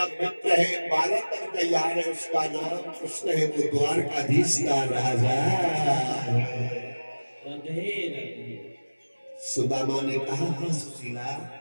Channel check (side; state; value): both; inverted; correlation -1.00